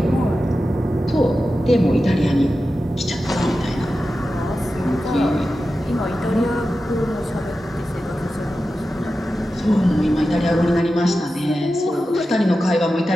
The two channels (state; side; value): normal; both; correlation 0.92